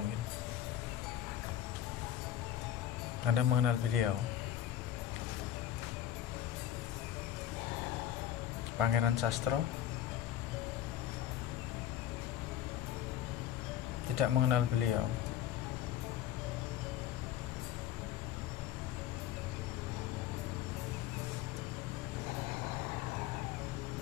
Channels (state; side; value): quieter; right; 11.4 dB